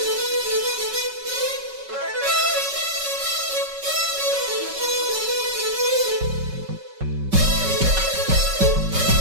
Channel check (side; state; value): left; late; 5.3 ms